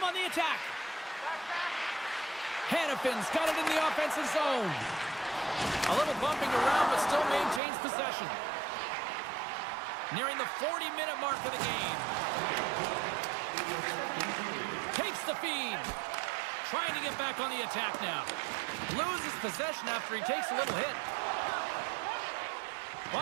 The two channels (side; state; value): left; drops out; at 7.6 s